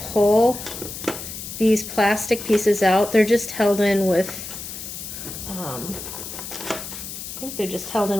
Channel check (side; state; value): left; noise; hiss, 9 dB below the sound